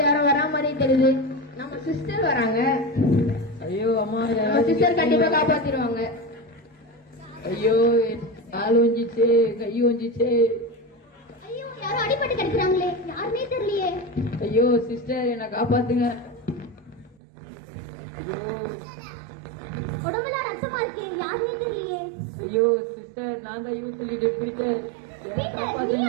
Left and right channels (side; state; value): left; drops out; at 17.2 s